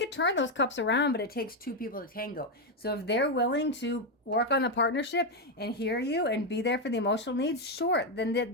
turn those cups around, but it takes 2 people to tango. So if they're willing to work on the partnership and hear you and be there for the emotional needs, sure, then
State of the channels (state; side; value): normal; both; correlation 0.05